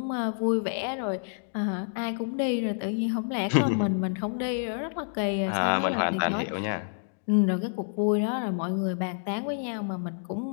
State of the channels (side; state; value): right; silent; digital silence